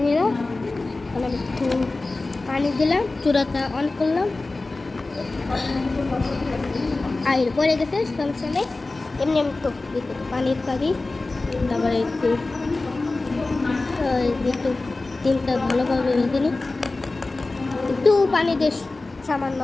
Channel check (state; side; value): quieter; right; 3.3 dB